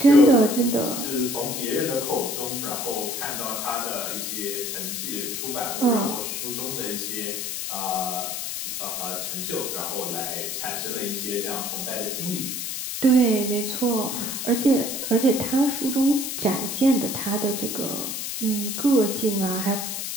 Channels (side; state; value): left; noise; hiss, 4 dB below the sound